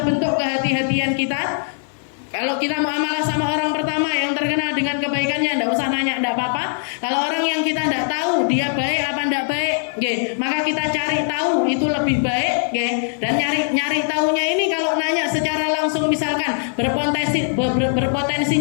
bentuk kehati-hatian kita. Kalau kita muamalah sama orang pertama yang terkenal dengan kebaikannya, tidak usah nanya, tidak apa-apa. Kalau orang yang kita tidak tahu dia baik apa tidak baik, maka kita cari tahu itu lebih baik, dan nyari tahunya ini kalau nanya secara langsung, misalkan berpotensi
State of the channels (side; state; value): right; silent; 65 dB below the other